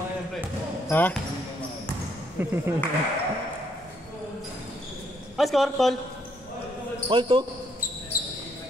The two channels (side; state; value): both; normal; correlation 0.71